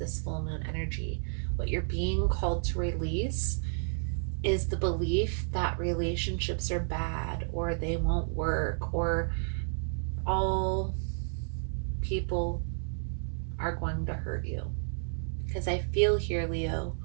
full moon energy, what you're being called to release is the belief that relationships are bad or they won't work or all people are going to hurt you. Because I feel here, Leo,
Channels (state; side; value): silent; left; 57 dB below the other